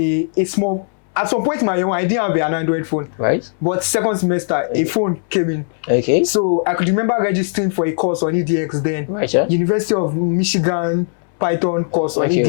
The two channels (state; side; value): silent; right; 67 dB below the other